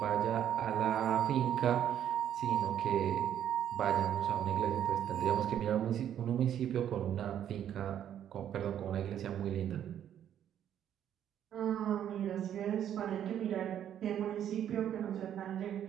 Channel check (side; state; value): left; quieter; 10.1 dB